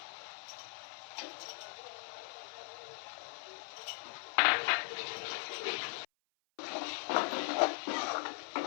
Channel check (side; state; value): right; silent; 52 dB below the other